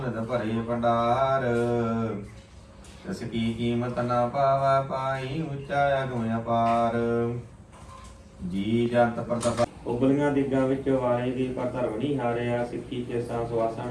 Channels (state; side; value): identical; both; correlation 1.00